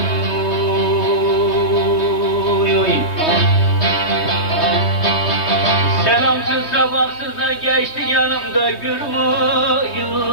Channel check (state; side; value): late; right; 3.2 ms